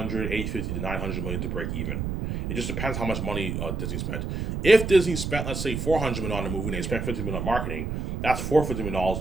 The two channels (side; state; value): right; noise; rumble, 3 dB below the sound